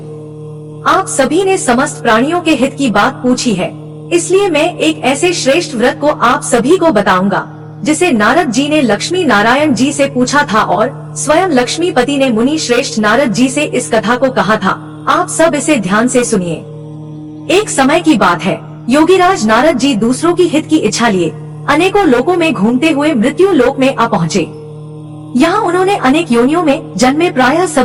आप सभी ने समस्त प्राणियों के हित की बात पूछी है, इसलिए मैं एक ऐसे श्रेष्ठ व्रत को आप सभी को बताऊंगा जिसे नारद जी ने लक्ष्मी नारायण जी से पूछा था और स्वयं लक्ष्मीपति ने मुनि श्रेष्ठ नारद जी से इस कथा को कहा था। आप सब इसे ध्यान से सुनिए। एक समय की बात है, योगीराज नारद जी दूसरों की हित की इच्छा लिए अनेकों लोकों में घूमते हुए मृत्यु लोक में आ पहुँचे। यहाँ उन्होंने अनेक योनियों में जन्मे प्रायः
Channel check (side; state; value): both; identical; correlation 1.00